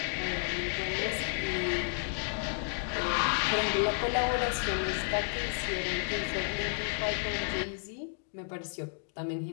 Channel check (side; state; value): right; silent; digital silence